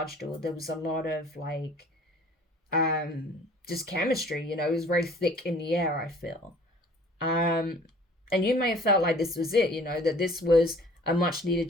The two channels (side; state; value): both; normal; correlation 0.51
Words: or there was a lot of like just chemistry, you know. It was very thick in the air, I feel. And you may have felt like this was it, you know, that this was a much needed